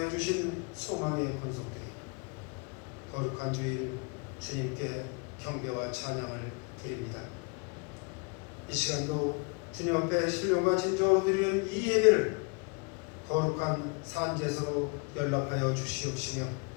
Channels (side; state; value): right; quieter; 33.0 dB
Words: 주신 소망의 권속들이 거룩한 주일 주님께 경배와 찬양을 드립니다. 이 시간도 주님 앞에 신령과 진정으로 드리는 이 예배를 거룩한 산제사로 연락하여 주시옵시며